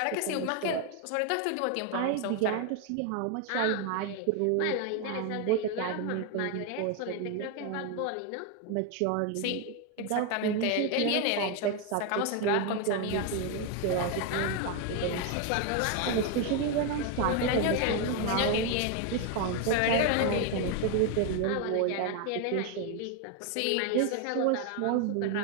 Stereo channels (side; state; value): both; different; correlation 0.01